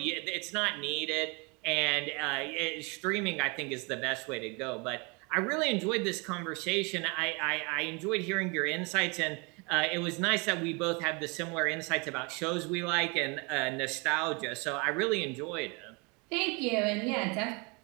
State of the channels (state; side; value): quieter; left; 30.2 dB